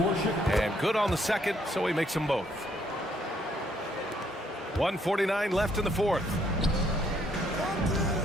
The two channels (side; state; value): both; normal; correlation 0.69